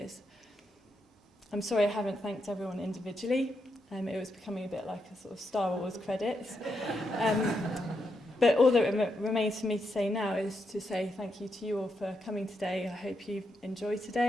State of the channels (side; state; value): both; normal; correlation 0.82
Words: I'm sorry I haven't thanked everyone individually. It was becoming a bit like a sort of Star Wars credits. But all that remains for me to say now is to say thank you to you all for coming today. I hope you enjoyed